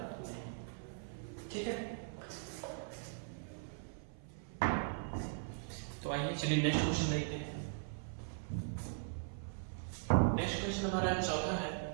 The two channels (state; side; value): silent; left; 51 dB below the other